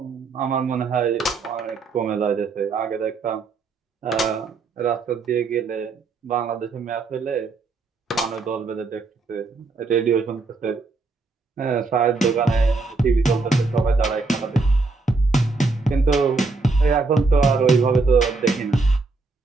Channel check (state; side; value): quieter; left; 3.8 dB